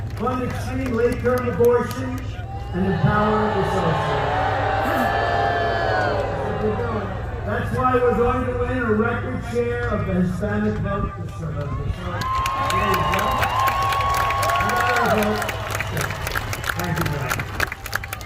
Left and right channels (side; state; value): both; identical; correlation 1.00